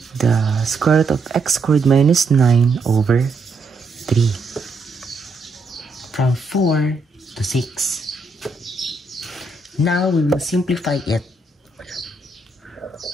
the square root of x squared minus 9 over 3 from 4 to 6. Now we will simplify it.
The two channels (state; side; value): quieter; left; 3.3 dB